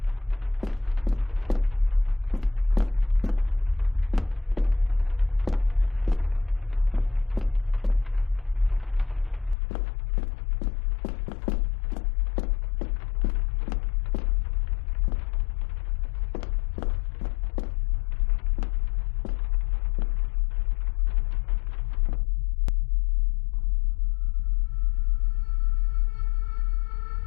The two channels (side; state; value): right; drops out; at 9.6 s